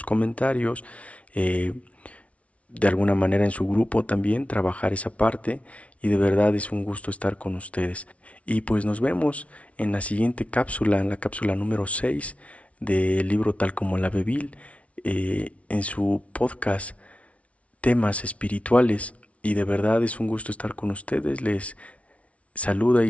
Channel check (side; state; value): right; late; 0.064 ms